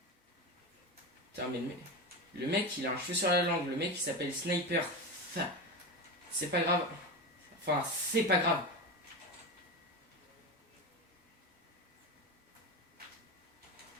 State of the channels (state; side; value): normal; both; correlation 0.21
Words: Putain, mais le mec, il a un cheveu sur la langue. Le mec, il s'appelle Sniper. C'est pas grave. Enfin, c'est pas grave.